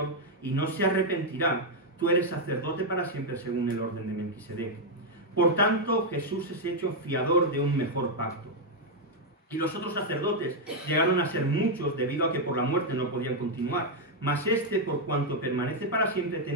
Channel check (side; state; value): both; normal; correlation 0.00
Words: y no se arrepentirá, tú eres sacerdote para siempre según el orden de Melquisedec. Por tanto, Jesús es hecho fiador de un mejor pacto. Y los otros sacerdotes llegaron a ser muchos debido a que por la muerte no podían continuar, mas este, por cuanto permanece para siempre,